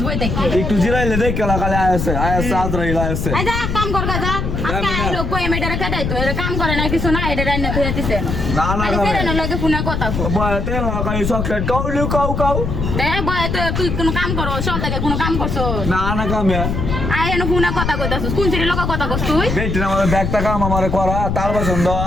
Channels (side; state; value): left; noise; rumble, 2 dB below the sound